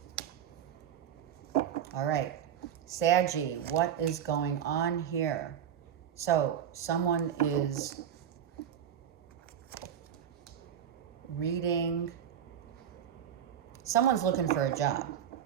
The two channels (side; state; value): left; quieter; 9.4 dB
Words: All right. Saggy, what is going on here? So someone is reading. Someone's looking for a job.